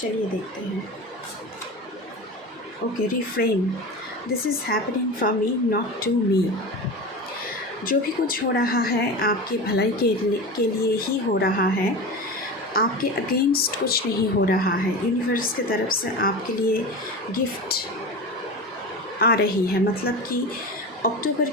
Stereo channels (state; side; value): normal; both; correlation 0.28